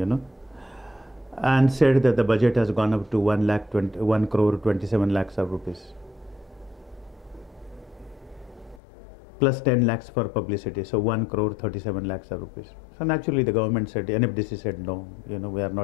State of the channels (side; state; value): right; drops out; at 8.8 s